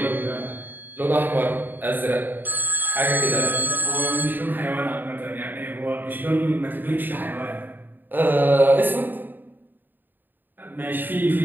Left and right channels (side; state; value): left; late; 0.091 ms